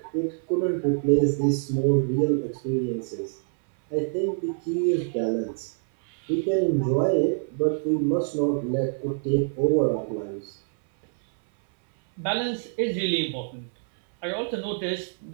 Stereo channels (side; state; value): left; silent; 61 dB below the other